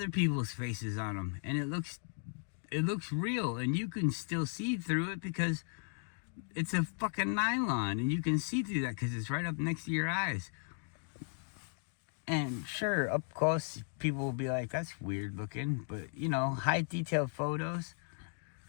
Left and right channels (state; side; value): silent; right; 54 dB below the other